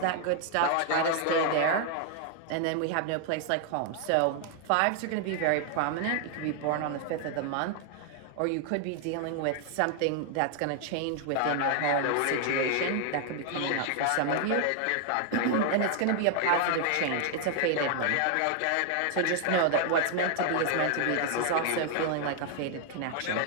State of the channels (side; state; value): both; different; correlation 0.00